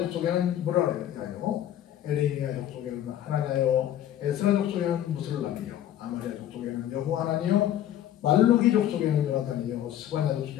뭐라 그래요? 에레미야 족속에는 하나냐요, 에스라 족속에는 무슬람이요, 아마랴 족속에는 여호하나니요, 말루기 족속에는 요나단이요, 스바냐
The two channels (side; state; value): right; quieter; 11.5 dB